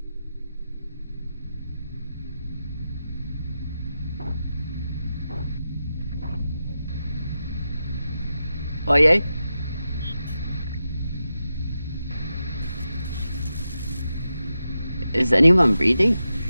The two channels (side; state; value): both; inverted; correlation -0.90